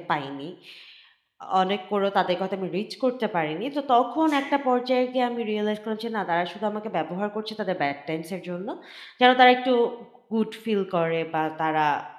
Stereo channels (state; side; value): identical; both; correlation 1.00